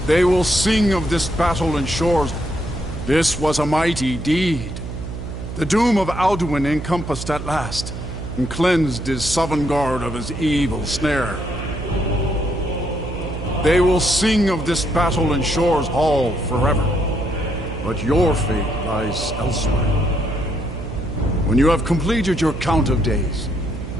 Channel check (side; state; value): right; noise; hum, 8 dB below the sound